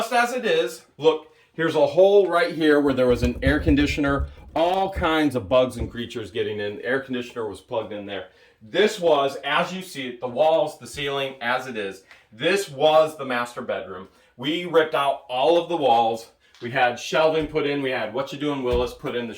as it is, look, here's a hole right here where there was an air conditioner, all kinds of bugs and creatures getting in. The air conditioner was plugged in there. This was, as you see it, the walls, the ceiling, as it is. This was the master bedroom. We ripped out all of the walls. We had shelving put in. We had What You Doing Willis put in the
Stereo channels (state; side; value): identical; both; correlation 1.00